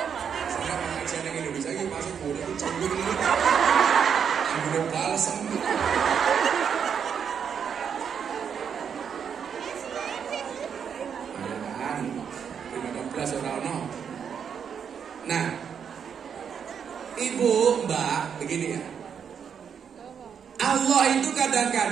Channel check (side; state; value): left; quieter; 7.4 dB